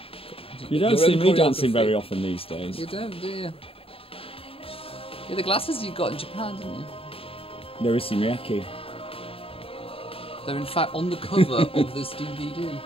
You don't Your see own me dancing choreography. very often these days. You don't, do you? Yeah, the glasses you got in Japan, didn't you? No, it's Miyake. They're in fact on the cover of this DVD.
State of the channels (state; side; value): late; right; 0.27 ms